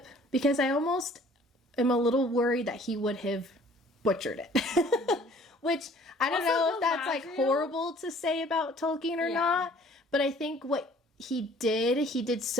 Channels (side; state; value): both; normal; correlation 0.54